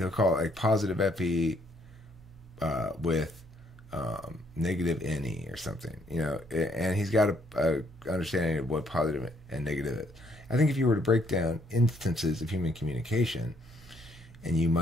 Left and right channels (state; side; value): normal; both; correlation 0.69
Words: call it like positive FE with negative NE or something, and he's got a understanding of what positive and negative is. I think if you were to break down instances of human communication, and you